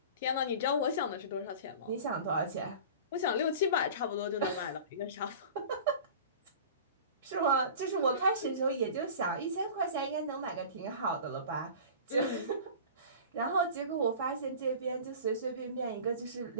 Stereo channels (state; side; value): inverted; both; correlation -0.38